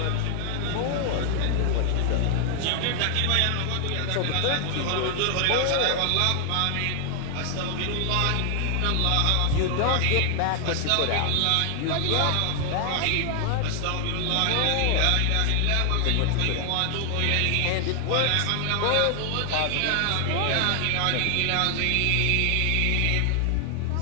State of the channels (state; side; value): different; both; correlation 0.00